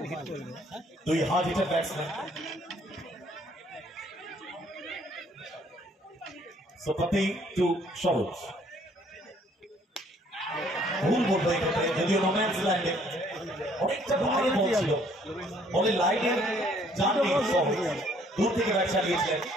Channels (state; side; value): normal; both; correlation 0.62